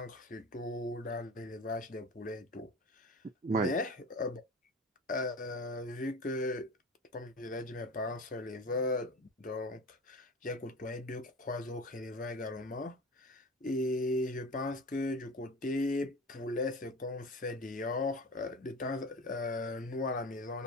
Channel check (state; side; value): normal; both; correlation 0.33